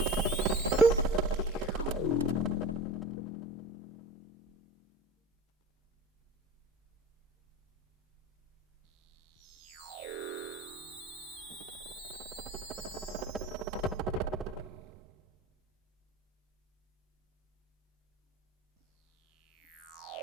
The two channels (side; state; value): both; normal; correlation 0.34